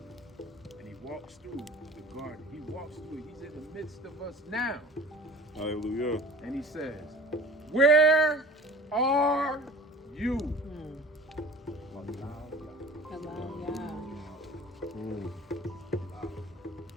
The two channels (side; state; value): both; normal; correlation 0.42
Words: And he walks through the garden. He walks through it. He's in the midst of us now. Hallelujah. And he says, where are you? Allow Yah.